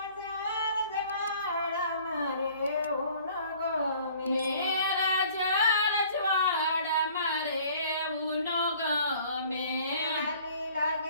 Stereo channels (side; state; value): both; inverted; correlation -0.53